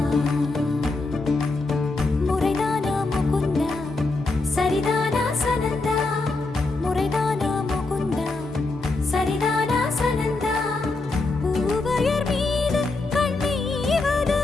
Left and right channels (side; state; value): right; quieter; 3.4 dB